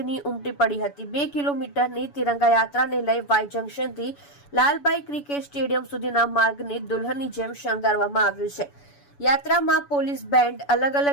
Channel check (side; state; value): right; late; 7.0 ms